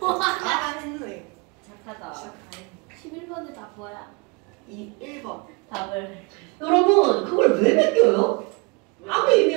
와. 했네. 착하다. 11번에 다 뭐야? 1번. 답을. 여러분 그걸 왜 맡겨요? 아무 의미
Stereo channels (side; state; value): left; quieter; 29.3 dB